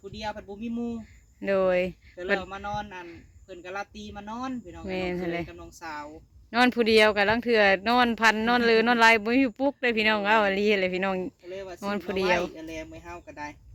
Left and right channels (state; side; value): identical; both; correlation 1.00